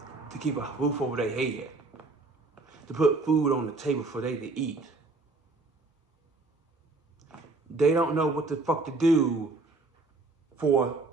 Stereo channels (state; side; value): quieter; left; 3.5 dB